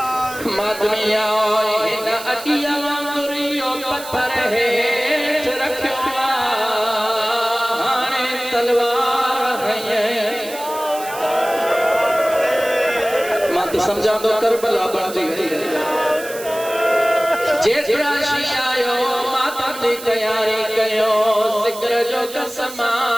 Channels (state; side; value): noise; right; hiss, 13 dB below the sound